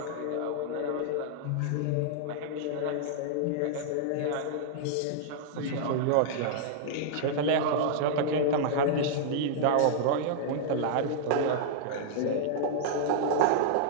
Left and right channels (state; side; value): different; both; correlation -0.02